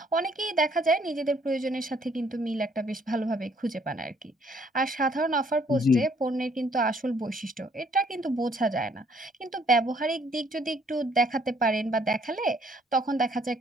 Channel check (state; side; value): normal; both; correlation 0.64